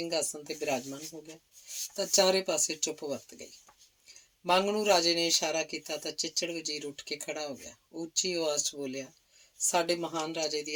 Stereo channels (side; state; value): both; identical; correlation 1.00